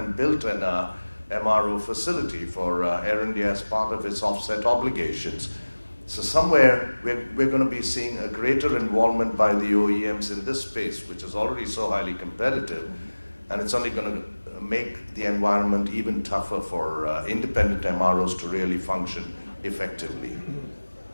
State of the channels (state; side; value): inverted; both; correlation -1.00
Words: built an MRO facility for Air India as part of its offset obligations. So somewhere we're going to be seeing a greater involvement by the OEMs in this space, which is already so highly competitive, and it's only going to make the environment even tougher for independent MROs to really function effectively.